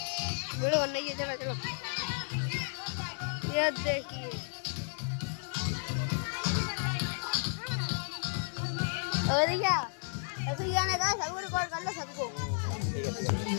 वीडियो बनना ही है। चलो चलो ये देखिए और क्या ऐसे गाने का सबको रिकॉर्ड कर लो सबको।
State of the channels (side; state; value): right; silent; digital silence